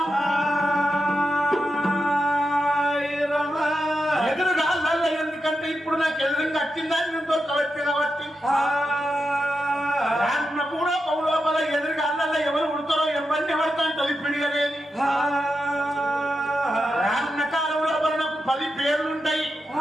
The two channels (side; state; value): both; normal; correlation 0.88